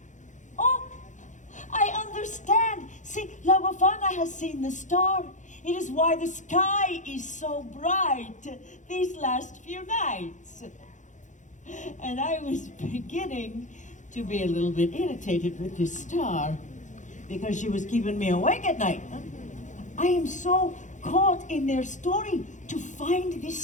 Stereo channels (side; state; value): right; late; 0.36 ms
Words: Oh, I understand. See, La Befana has seen the star. It is why the sky is so bright these last few nights. And I was beginning to be a little bit irritated with this star because she was keeping me awake at night. I am so caught in their story to find